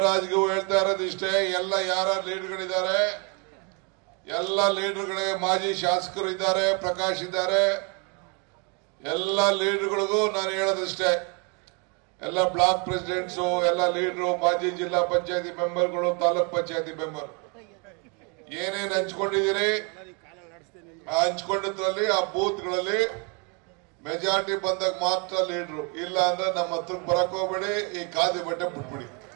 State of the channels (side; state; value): left; quieter; 34.0 dB